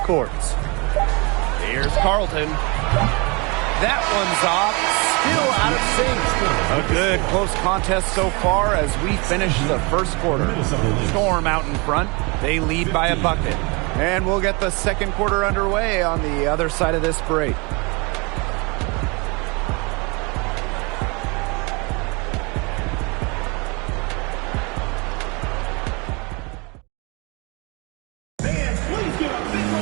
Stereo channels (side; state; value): left; quieter; 28.8 dB